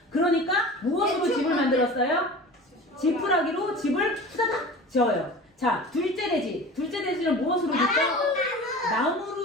그러니까 무엇으로 집을 만들었어요? 지푸라기로 집을 후다닥 지어요. 자, 둘째 돼지는 무엇으로 짓죠?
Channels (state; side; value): normal; both; correlation 0.37